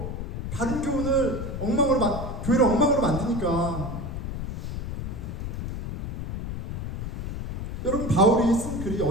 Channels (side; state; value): left; noise; rumble, 4 dB below the sound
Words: 바른 교훈을 교회를 엉망으로 만드니까. 여러분 바울이 쓴 글이